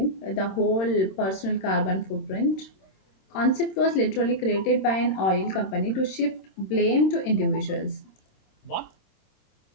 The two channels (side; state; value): right; late; 26 ms